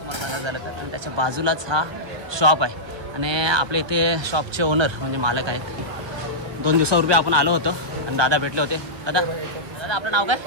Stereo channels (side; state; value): left; late; 1.2 ms